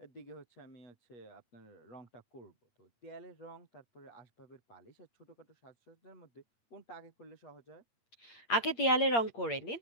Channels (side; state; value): right; late; 8.6 ms